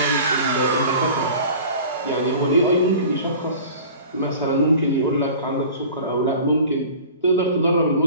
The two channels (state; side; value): inverted; both; correlation -0.41